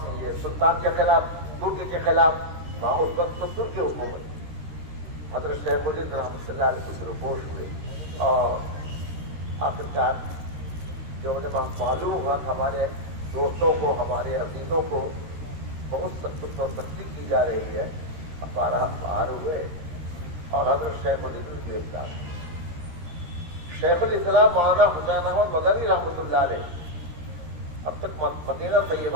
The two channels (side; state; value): left; late; 13 ms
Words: یہ سلطان کے خلاف، ترک کے خلاف، وہاں اس وقت تو ترک کی حکومت، حضرت شیخ الہند رحمۃ اللہ علیہ سے رپورٹ ہوئے، اور آخرکار جو انہیں معلوم ہوا کہ ہمارے دوستوں کو، ہمارے عزیزوں کو بہت سخت اور سختی کی جا رہی ہے، ہمارا باہر ہوئے اور حضرت شیخ الہند گرفتار ہوئے۔ شیخ الاسلام مولانا حسین احمد مدنی رحمۃ اللہ علیہ اب تک مدینہ